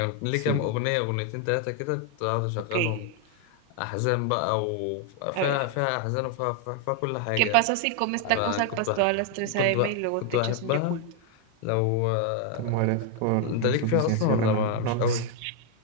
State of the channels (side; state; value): both; different; correlation 0.00